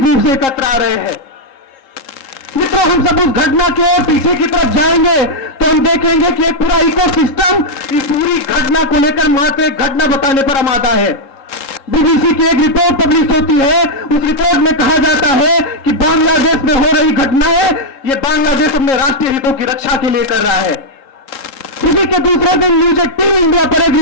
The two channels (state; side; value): late; right; 3.7 ms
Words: रूप से एकत्र आ रहे हैं। मित्रों, हम सब उस घटना के और पीछे की तरफ जाएंगे तो हम देखेंगे कि एक पूरा इकोसिस्टम इस पूरी घटना को लेकर मात्र एक घटना बताने पर आमादा है। बीबीसी की एक रिपोर्ट पब्लिश होती है, उस रिपोर्ट में कहा जाता है कि बांग्लादेश में हो रही घटनाएं ये बांग्लादेश अपने राष्ट्रीय हितों की रक्षा के लिए कर रहा है। इसी के दूसरे दिन न्यूज 18 इंडिया पर एक